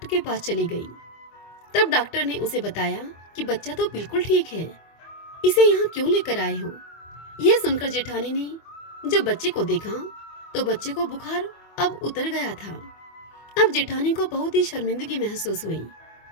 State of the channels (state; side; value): late; right; 24 ms